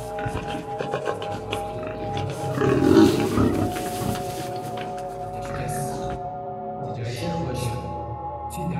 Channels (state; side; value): identical; both; correlation 1.00